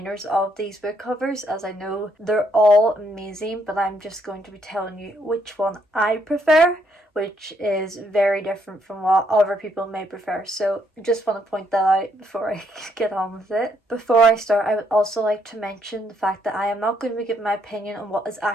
of these book covers, as I know they're all amazing, but I'm just going to be telling you which one I prefer, which is very different from what other people may prefer. So I just want to point that out before I get on with it. Before I start, I would also like to mention the fact that I am not going to be giving my opinion on what is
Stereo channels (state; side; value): normal; both; correlation 0.72